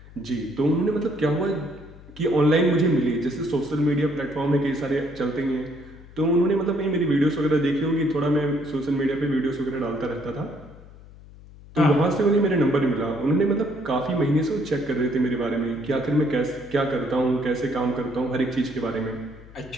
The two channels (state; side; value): noise; left; hum, 20 dB below the sound